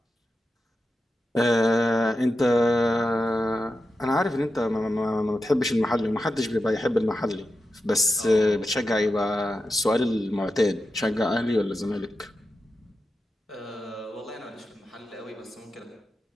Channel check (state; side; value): normal; both; correlation 0.90